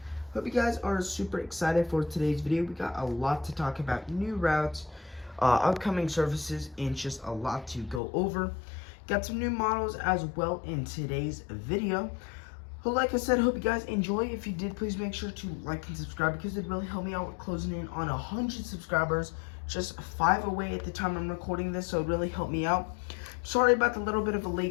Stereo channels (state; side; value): drops out; right; at 8.0 s